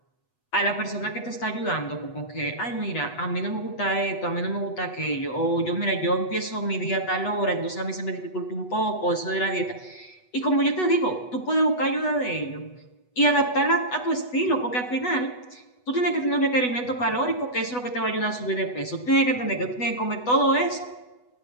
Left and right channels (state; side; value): late; right; 8.1 ms